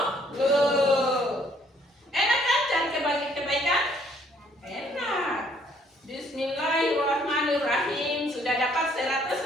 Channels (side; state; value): both; normal; correlation 0.64